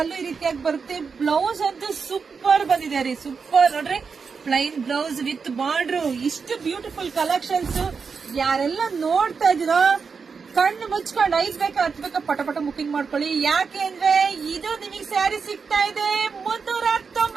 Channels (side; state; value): left; quieter; 5.5 dB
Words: ಈ ರೀತಿಯಾಗಿ ಬರುತ್ತೆ. ಬ್ಲೌಸ್ ಅಂತೂ ಸೂಪರ್ ಬಂದಿದೆ ರೀ, ಸೂಪರ್ ನೋಡ್ರಿ. ಪ್ಲೈನ್ ಬ್ಲೌಸ್ ವಿತ್ ಬಾರ್ಡ್ರು, ಇಷ್ಟು ಬ್ಯೂಟಿಫುಲ್ ಕಲೆಕ್ಷನ್ಸ್. ಯಾರೆಲ್ಲ ನೋಡ್ತಾ ಇದೀರೋ ಕಣ್ಣು ಮುಚ್ಕೊಂಡು 5 ಬೇಕಾ 10 ಬೇಕಾ ಪಟ ಪಟ ಬುಕಿಂಗ್ ಮಾಡ್ಕೊಳ್ಳಿ. ಯಾಕೆ ಅಂದ್ರೆ ಇದು ನಿಮಗೆ ಸ್ಯಾರಿ ಸಿಗ್ತಾ ಇದೆ